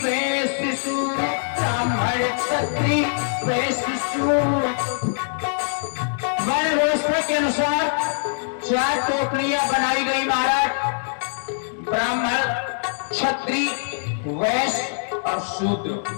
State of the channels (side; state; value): right; silent; digital silence